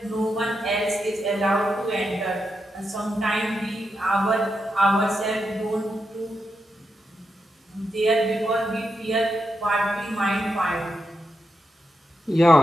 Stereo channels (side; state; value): both; normal; correlation 0.86